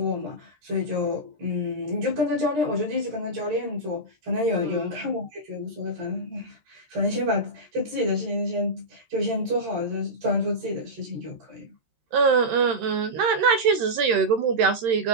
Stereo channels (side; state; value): left; late; 13 ms